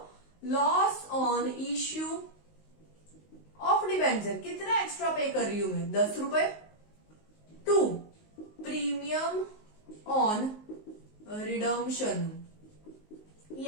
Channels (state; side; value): late; right; 19 ms